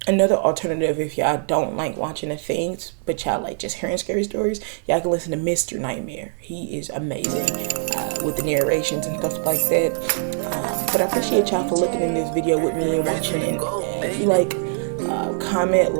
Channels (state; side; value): silent; left; digital silence